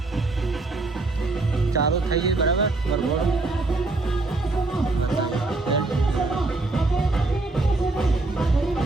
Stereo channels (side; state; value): left; quieter; 3.2 dB